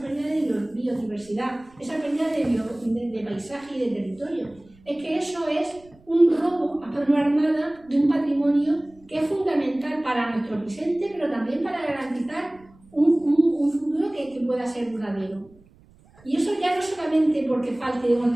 de biodiversidad, esa pérdida de paisaje y de territorio. Es que eso es un robo a mano armada de un patrimonio que es fundamental para nuestro presente, pero también para garantizar un futuro que pueda ser duradero. Y eso ya no solamente porque falte o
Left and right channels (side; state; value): right; noise; rumble, 28 dB below the sound